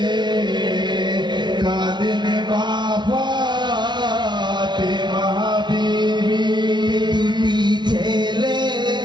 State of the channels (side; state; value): left; late; 0.21 ms